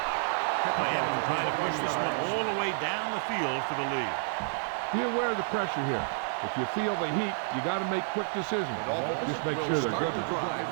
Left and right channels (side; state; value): left; silent; digital silence